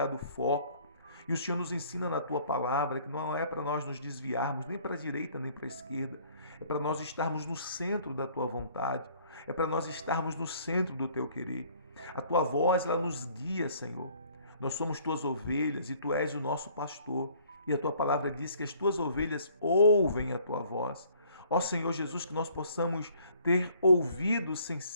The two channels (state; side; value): inverted; both; correlation -0.58